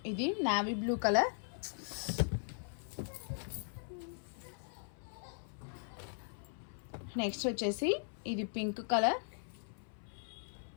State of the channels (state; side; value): silent; right; 52 dB below the other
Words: ఇది నావీ బ్లూ కలర్. నెక్స్ట్ వచ్చేసి ఇది పింక్ కలర్.